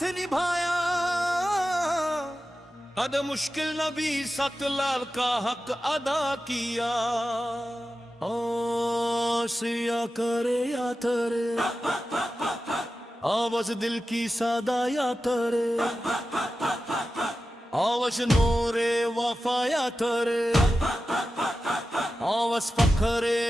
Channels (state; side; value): normal; both; correlation 0.93